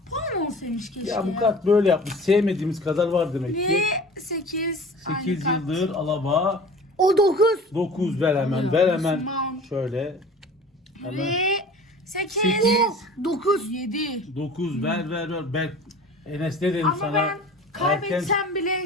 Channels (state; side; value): normal; both; correlation 0.42